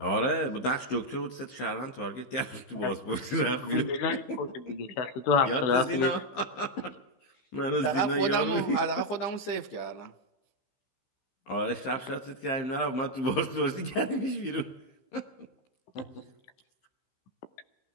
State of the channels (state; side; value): late; right; 15 ms